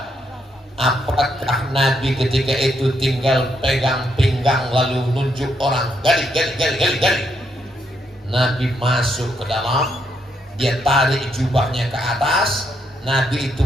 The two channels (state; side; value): normal; both; correlation 0.77